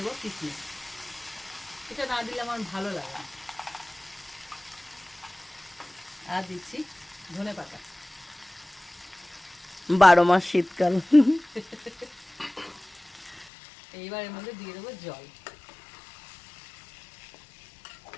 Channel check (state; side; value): drops out; right; at 13.5 s